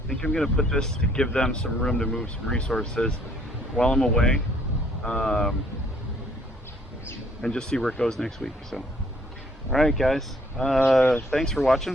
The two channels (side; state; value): both; normal; correlation 0.63